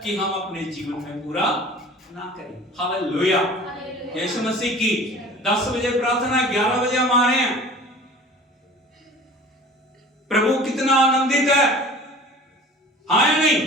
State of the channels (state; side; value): normal; both; correlation 0.43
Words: कि हम अपने जीवन में पूरा ना करें। हालेलुया, यीशु मसीह की। 10 बजे प्रार्थना, 11 बजे हम आ रहे हैं। प्रभु कितना आनंदित है, हाँ या नहीं?